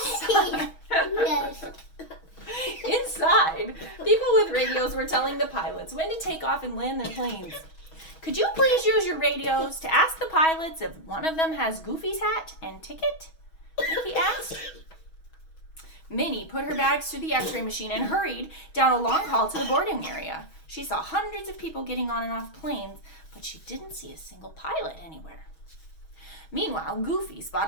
Inside, people with radios were telling the pilots when to take off and land their planes. Could you please use your radios to ask the pilots if one of them has Goofy's hat and ticket? Mickey asked. Minnie put her bags through the x-ray machine and hurried down a long hall to the boarding area. She saw hundreds of people getting on and off planes, but she didn't see a single pilot anywhere. Meanwhile, Goofy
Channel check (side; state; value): right; late; 6.2 ms